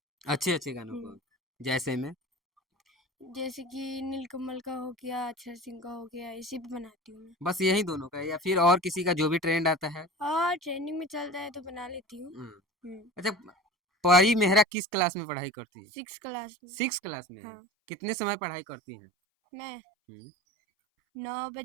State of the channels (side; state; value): left; drops out; at 14.7 s